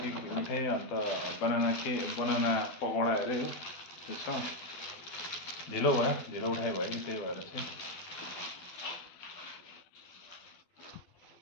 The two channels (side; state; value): right; late; 12 ms